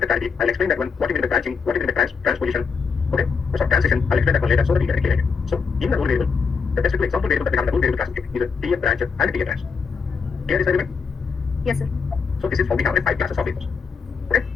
the clarity. I'll explain that one. What you mean by branching, what you mean by transposition. Okay, so transition, I'll explain that one later so that we get it clear. So in the rule variable, the best example variable that we have in the rule variable classification is a PA branch and PA branch. Clear this argument? Yes, sir. So this is how we have 5 classes of variables. Okay,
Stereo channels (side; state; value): right; quieter; 5.5 dB